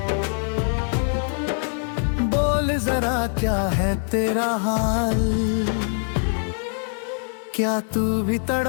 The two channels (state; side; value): silent; right; 63 dB below the other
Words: बोल जरा क्या है तेरा हाल। क्या तू भी